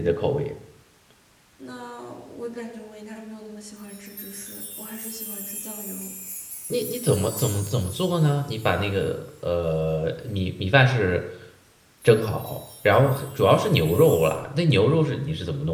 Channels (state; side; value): identical; both; correlation 1.00